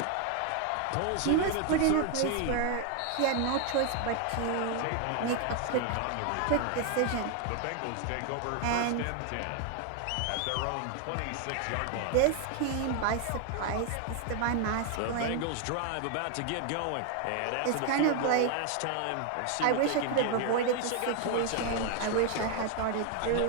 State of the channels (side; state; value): both; different; correlation 0.01